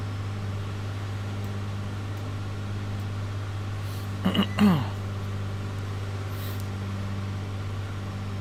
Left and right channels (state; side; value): identical; both; correlation 1.00